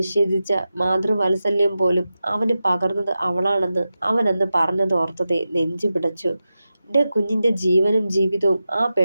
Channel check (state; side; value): inverted; both; correlation -0.92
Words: മാതൃവാത്സല്യം പോലും അവന് പകർന്നത് അവളാണെന്ന് അവനന്ന് പറഞ്ഞതോർത്തതേ നെഞ്ചു പിടച്ചു. എന്റെ കുഞ്ഞിന്റെ ജീവനും ജീവിതവും ആ